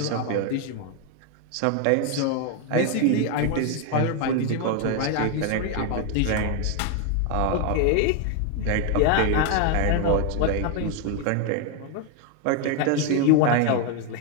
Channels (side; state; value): both; different; correlation 0.01